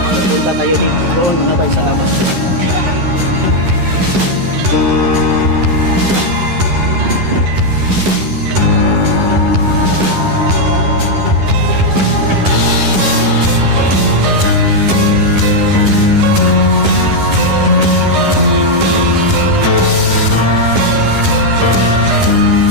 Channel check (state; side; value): late; left; 11 ms